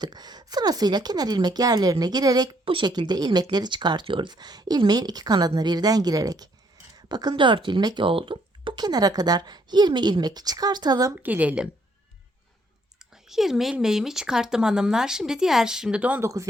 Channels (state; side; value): normal; both; correlation 0.69